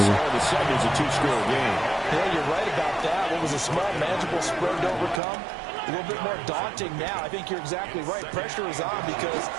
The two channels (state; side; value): drops out; left; at 5.2 s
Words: It's a two-score game. Yeah, you're right about that. What was a small, manageable spread to overcome? A little bit more daunting now. I think you're exactly right. Pressure is on because